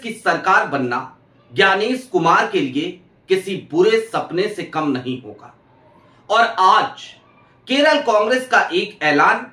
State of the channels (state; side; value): identical; both; correlation 1.00